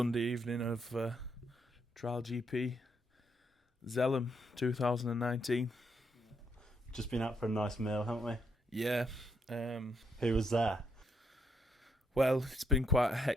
evening of Trial GP Zelhem 2019. Just been out for a nice meal, haven't we? Yeah. Who was there? Well, it's been quite a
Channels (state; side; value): normal; both; correlation 0.75